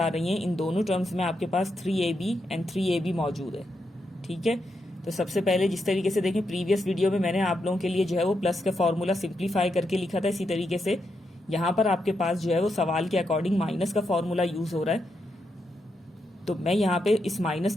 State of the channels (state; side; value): normal; both; correlation 0.83